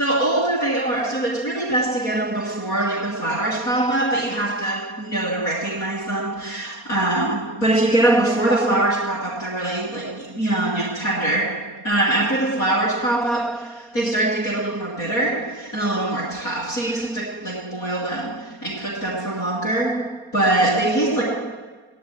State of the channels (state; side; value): late; right; 4.2 ms